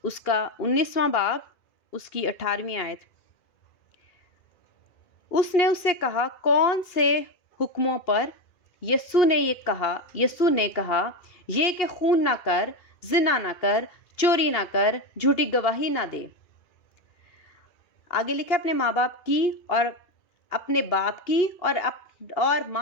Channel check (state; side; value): late; right; 2.4 ms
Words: اس کا 19واں باب، اس کی 18ویں آیت، اس نے اس سے کہا، کون سے حکموں پر؟ یسوع نے کہا، یہ کہ خون نہ کر، زنا نہ کر، چوری نہ کر، جھوٹی گواہی نہ دے۔ آگے لکھا، اپنے ماں باپ کی اور اپنے باپ کی اور